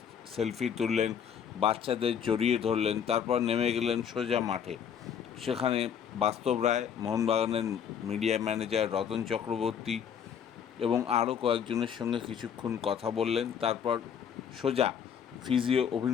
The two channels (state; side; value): quieter; right; 8.1 dB